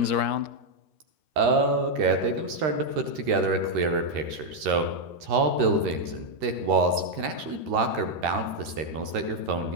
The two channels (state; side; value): late; left; 13 ms